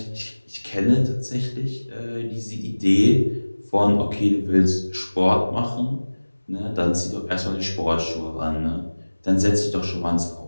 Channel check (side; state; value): both; inverted; correlation -1.00